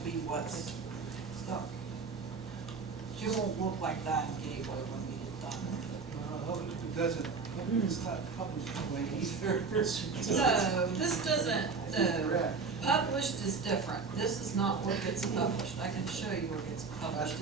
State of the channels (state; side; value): quieter; left; 4.8 dB